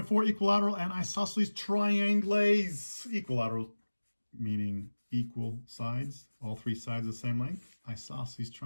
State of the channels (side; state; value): both; inverted; correlation -1.00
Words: equilateral and isosceles triangles. Equilateral meaning equal sides, all three sides of the same length. Isosceles